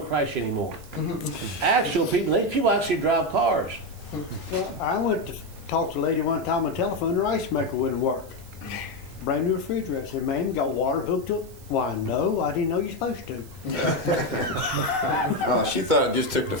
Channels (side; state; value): right; noise; hiss, 23 dB below the sound